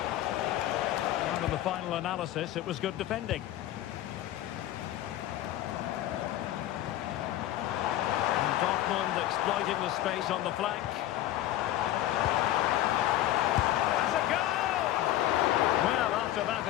Well, the the final analysis, it was good defending. And Dortmund exploiting the space on the flank. That's a goal! Well, after that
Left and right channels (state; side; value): quieter; right; 13.8 dB